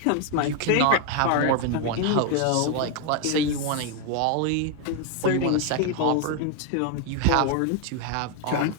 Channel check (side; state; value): both; different; correlation 0.01